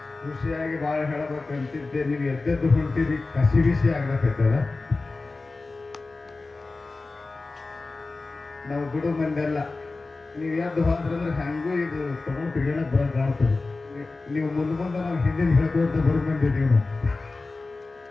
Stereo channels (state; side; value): quieter; right; 3.6 dB